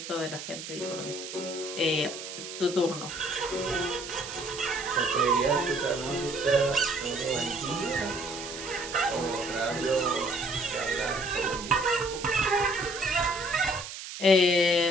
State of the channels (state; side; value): noise; right; hiss, 10 dB below the sound